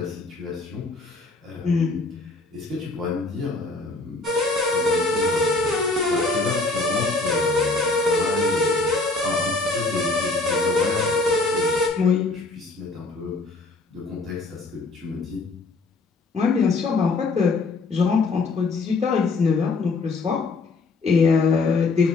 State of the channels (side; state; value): right; quieter; 3.5 dB